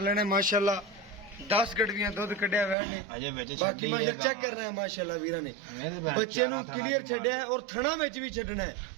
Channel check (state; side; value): drops out; left; at 2.8 s